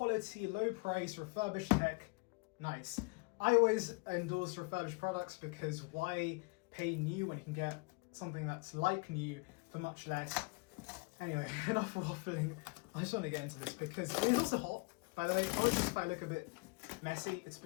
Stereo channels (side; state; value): right; quieter; 29.7 dB